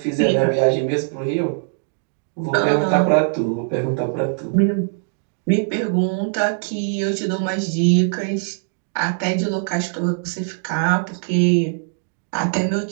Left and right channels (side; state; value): left; silent; digital silence